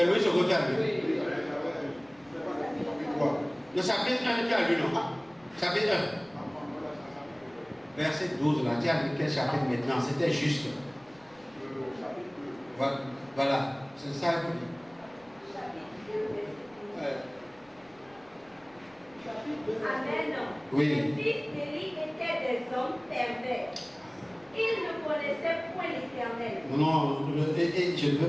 Louis II qui a lu. Oui. Le chapitre 1 qui a lu, non? Chapitre 1. Verset 12, là. Tu as lu quel chapitre maintenant? C'était juste. Voilà. C'est ça que vous dites. Amen. Oui. Les fils d'Élie étaient des hommes pervers. Ils ne connaissaient point l'Éternel. Non, je ne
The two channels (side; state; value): left; noise; rumble, 30 dB below the sound